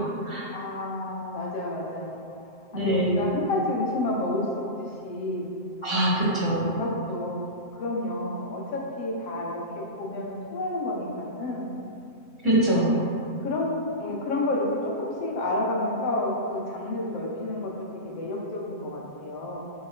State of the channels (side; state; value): right; late; 7.7 ms